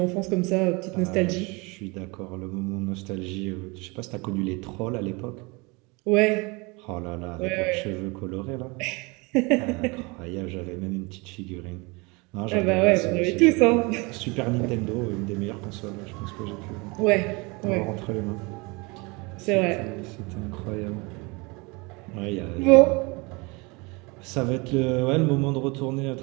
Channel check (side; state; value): left; quieter; 27.1 dB